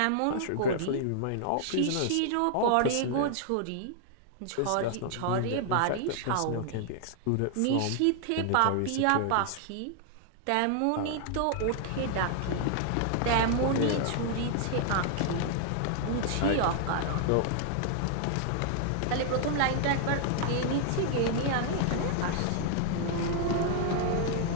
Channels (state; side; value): different; both; correlation 0.00